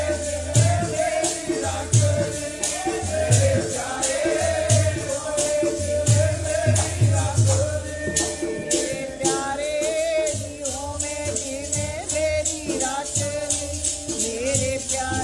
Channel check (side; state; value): both; identical; correlation 1.00